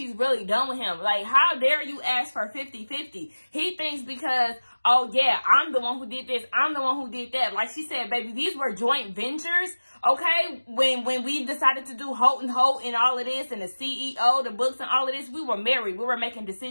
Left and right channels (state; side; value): inverted; both; correlation -1.00